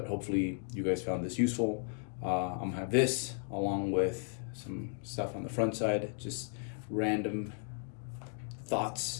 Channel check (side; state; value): right; silent; 54 dB below the other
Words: hopefully you guys found this useful. I'm gonna have this along with some stuff on the front side, just random thoughts